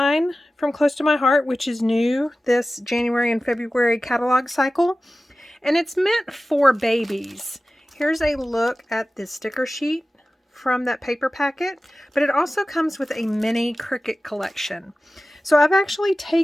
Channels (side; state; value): both; normal; correlation 0.96